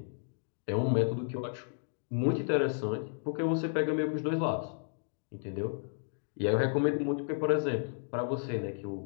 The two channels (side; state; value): right; silent; digital silence